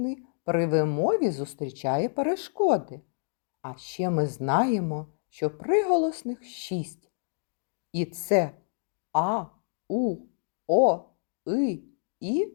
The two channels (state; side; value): silent; right; digital silence